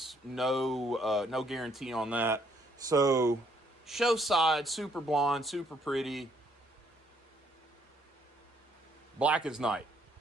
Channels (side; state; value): both; normal; correlation 0.68